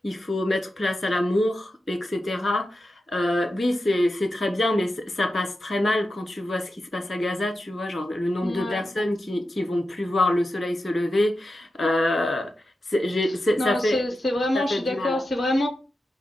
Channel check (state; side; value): normal; both; correlation 0.91